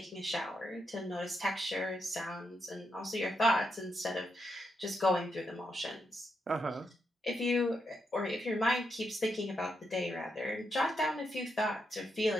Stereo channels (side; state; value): both; normal; correlation 0.82